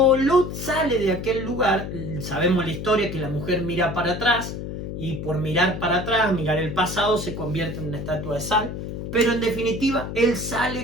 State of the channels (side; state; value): left; noise; hum, 7 dB below the sound